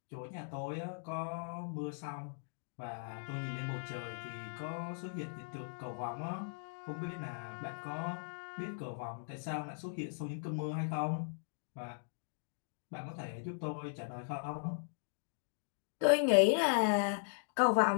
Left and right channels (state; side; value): silent; right; digital silence